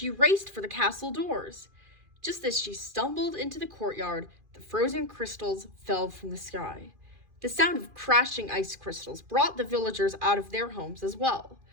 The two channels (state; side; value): late; left; 2.4 ms